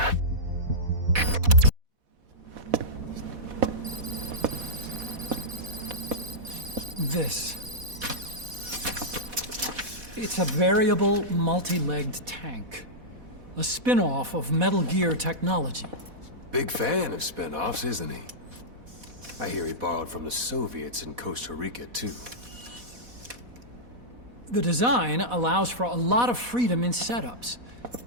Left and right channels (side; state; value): left; late; 4.1 ms